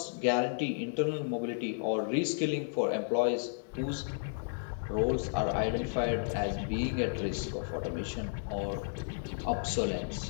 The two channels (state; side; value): silent; right; digital silence